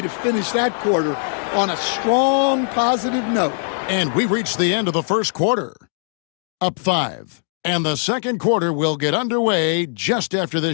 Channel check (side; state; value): right; silent; digital silence